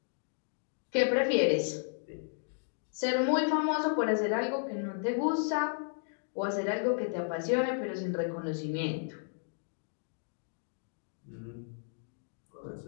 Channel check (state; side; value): silent; right; digital silence